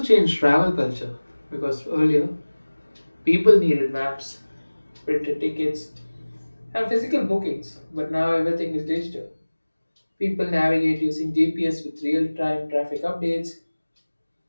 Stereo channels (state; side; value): inverted; both; correlation -1.00